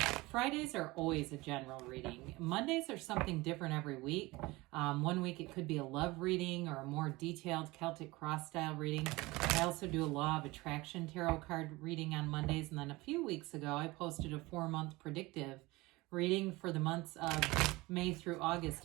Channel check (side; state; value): left; quieter; 21.5 dB